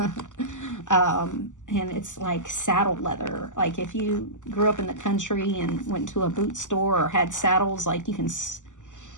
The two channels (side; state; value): right; late; 0.86 ms